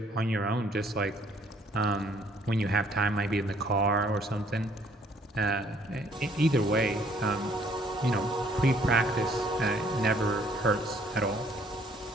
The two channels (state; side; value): normal; both; correlation 0.62